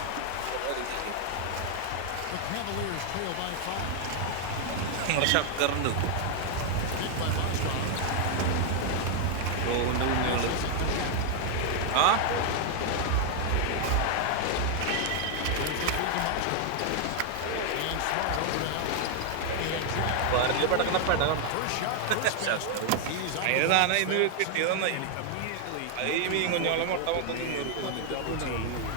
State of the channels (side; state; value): both; different; correlation 0.00